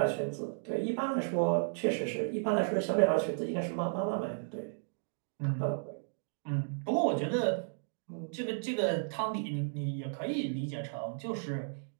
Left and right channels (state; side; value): silent; left; digital silence